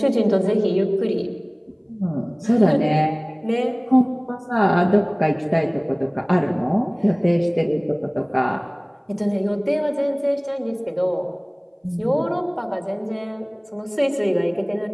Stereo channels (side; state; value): both; identical; correlation 1.00